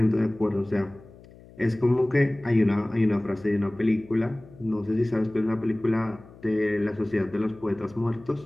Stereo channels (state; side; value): noise; left; hum, 22 dB below the sound